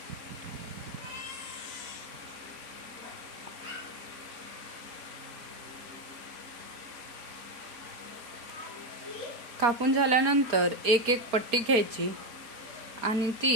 कापून झाल्यानंतर एक एक पट्टी घ्यायची आणि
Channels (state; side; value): late; left; 4.3 ms